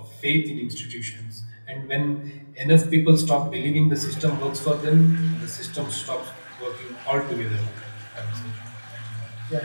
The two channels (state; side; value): inverted; both; correlation -1.00